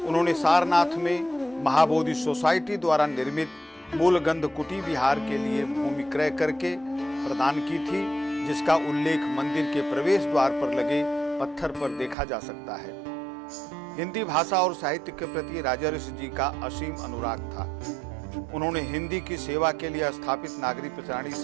उन्होंने सारनाथ में महाबोधि सोसाइटी द्वारा निर्मित मूलगंध कुटी विहार के लिए भूमि क्रय करके प्रदान की थी, जिसका उल्लेख मंदिर के प्रवेश द्वार पर लगे पत्थर पर देखा जा सकता है। हिंदी भाषा और साहित्य के प्रति राजर्षि जी का असीम अनुराग था। उन्होंने हिंदी की सेवा के लिए स्थापित नागरिक प्रचारणी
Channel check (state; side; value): drops out; left; at 12.2 s